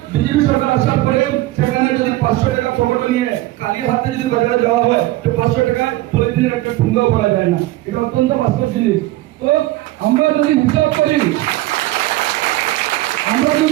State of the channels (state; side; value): quieter; left; 17.2 dB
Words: বিজেপি সরকার আসার পরে সেখানে যদি 500 টাকা পকেটে নিয়ে কালি হাতে যদি বাজারে যাওয়া হয় তো 500 টাকায় পলিথিনের একটা ঠুঙ্গাও করা যায় না। এটা অত্যন্ত বাস্তব জিনিস। তো আমরা যদি হিসাব করি